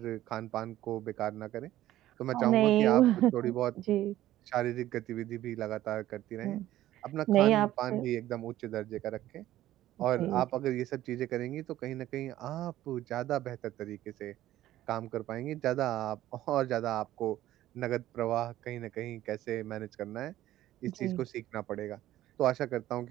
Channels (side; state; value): left; quieter; 14.2 dB